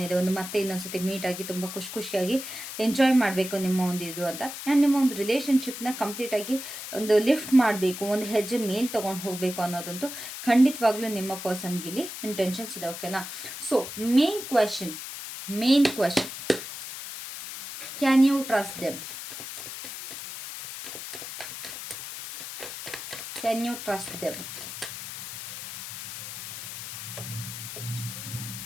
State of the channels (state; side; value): noise; left; hiss, 9 dB below the sound